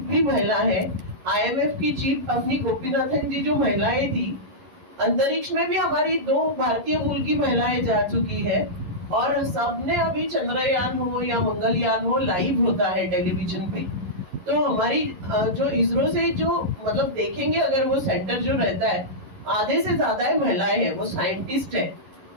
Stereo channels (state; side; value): late; left; 11 ms